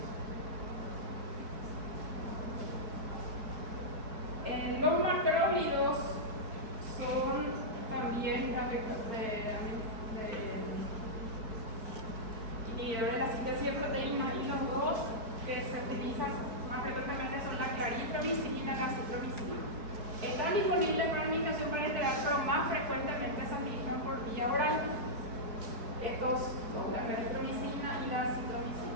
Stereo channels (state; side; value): late; left; 4.6 ms